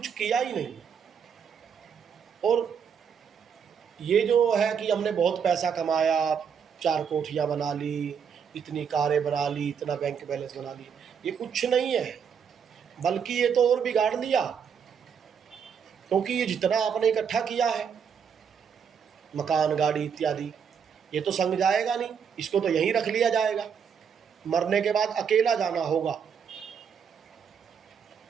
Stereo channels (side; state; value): left; quieter; 7.1 dB